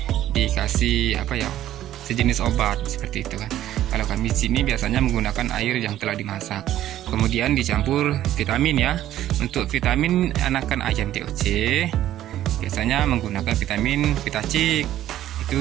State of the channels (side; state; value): left; quieter; 12.7 dB